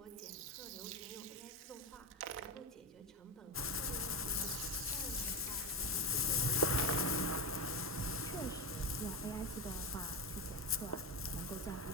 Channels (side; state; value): both; normal; correlation 0.16